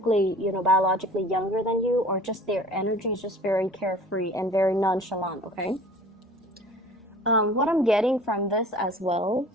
you know, biologically younger than you, or just their energy is just very carefree and very nonchalant, okay? What I'm getting from this as well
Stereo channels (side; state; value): both; normal; correlation 0.46